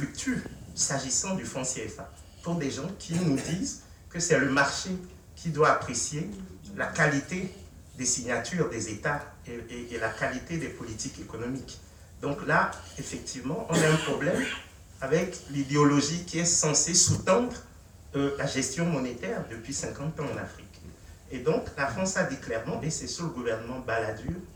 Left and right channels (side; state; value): both; identical; correlation 1.00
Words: s'agissant du franc CFA, pour des gens qui nous disent que c'est le marché qui doit apprécier la qualité des signatures des États et la qualité des politiques économiques. Donc là, effectivement, on a un problème avec l'idéologie qui est censée sous-tendre la gestion monétaire depuis 50 ans en Afrique. Et donc, la France a dit clairement, et c'est sous le gouvernement Balladur